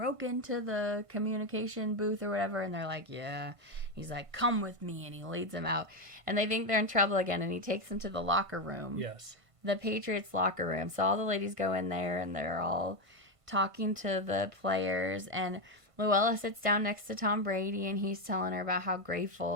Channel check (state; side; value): late; left; 1.5 ms